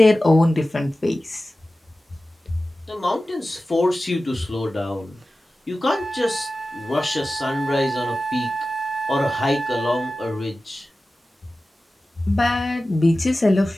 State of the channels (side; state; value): both; normal; correlation 0.95